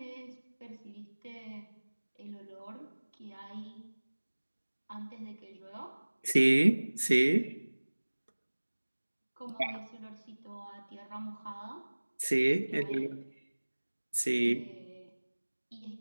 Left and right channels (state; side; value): inverted; both; correlation -1.00